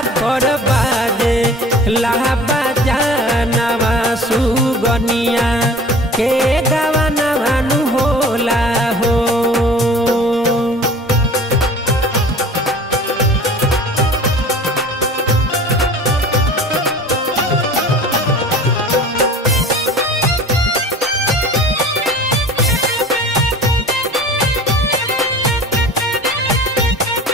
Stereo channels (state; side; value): normal; both; correlation 0.43